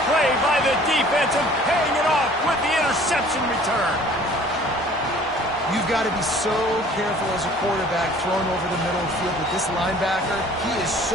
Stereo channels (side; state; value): both; normal; correlation 0.51